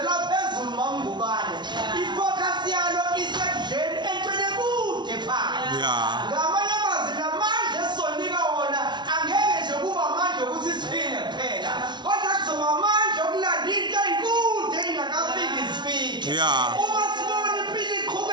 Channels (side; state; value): left; late; 0.21 ms